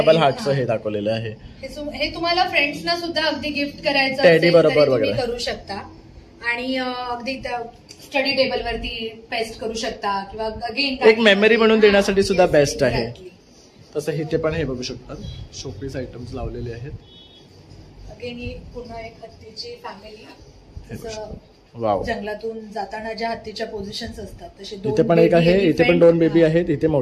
हार्टचं हे दाखवलेलं आहे. हे तुम्हाला फ्रेंड्सना सुद्धा अगदी गिफ्ट करायचं टेडी बरोबर तुम्ही करू शकता आणि अगदी स्टडी टेबल वरती पेस्ट करू शकता किंवा अगेन एक मेमरी म्हणून देण्यासाठी सुद्धा बेस्ट आहे. तसं इथे पण हे बघू शकतात शोपीस आयटम्स लावलेले आहेत. अगेन ही पुन्हा एक हत्तीची फॅमिली, वाव, जंगलातून जाताना ज्या हत्तीच्या पोझिशन्स असतात तसे इथे पण एक आहे, इथे पण 2 बेबी आहेत, इथे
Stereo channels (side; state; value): both; identical; correlation 1.00